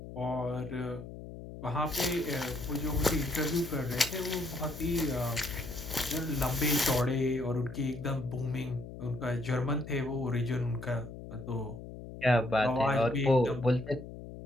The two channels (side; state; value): left; noise; hum, 12 dB below the sound